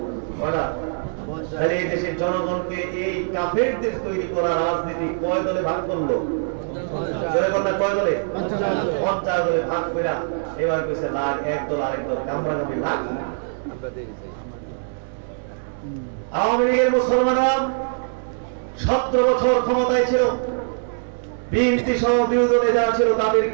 তাহলে এই দেশের জনগণকে এই কাফেরদের তৈরি করা রাজনীতি কয় দলে ভাগ করলো? কয় দলে? 50 দলে ভাগ করে এবার কইছে লাখ, এক দল আরেক দল কামড়াকামড়ি লাখ। আওয়ামী লীগের মুসলমানরা 17 বছর ক্ষমতায় ছিল। বিএনপি সহ বিরোধী দলে যারা ছিল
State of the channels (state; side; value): silent; left; 64 dB below the other